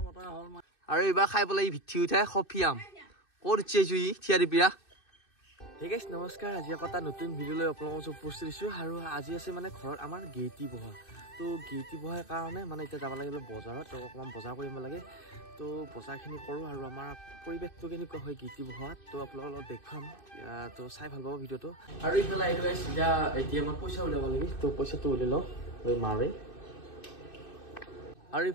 আৰু এবাৰ খাই পেলাই ভিঠি উঠাই কফিয়াম ক'ত উঠিছো ই থিয়াৰি পিয়া ঠিক আছে নমস্কাৰ আজি এটা নতুন ভিডিঅ' লৈ আপোনালোকক উপস্থিত দিছোঁ আৰু আজি আছে মানে ঘৰত আমাৰ গেইটি বহা তো গেইটি বহাৰ কাৰণে মানে এতিয়া যাব লাগে বজাৰত তো অকণমান বজাৰ কৰিব লাগে তো বজাৰখিনি কৰোঁ আৰু আমাৰ পৰিৱেশটো কেনেকুৱা হয় গেইটি বহাত তো আপোনালোকৰ লগত দেখুৱাম তো চাই ভাল পাব ভিডিঅ'টো আৰু ইফালে আহিলোঁ এতিয়া ATMত পইচা উলিয়াব লাগে তো পইচাটো উলিয়াই লওঁ মাৰে আৰু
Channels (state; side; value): late; right; 2.6 ms